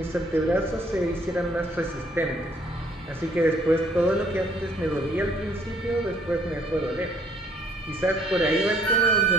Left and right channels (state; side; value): normal; both; correlation 0.62